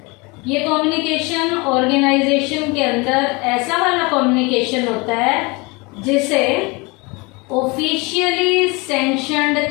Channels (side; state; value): right; quieter; 26.8 dB